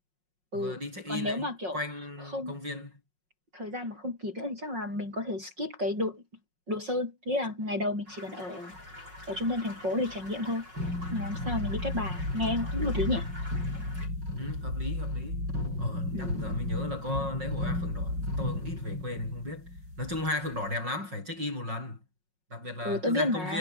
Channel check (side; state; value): left; late; 5.5 ms